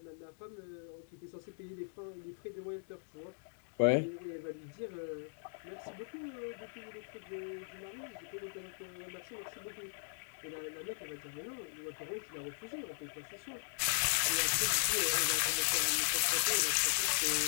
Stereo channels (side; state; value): right; silent; digital silence